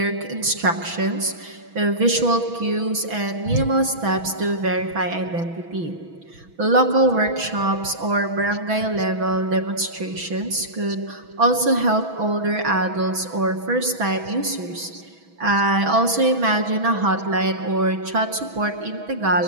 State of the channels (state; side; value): late; left; 6.1 ms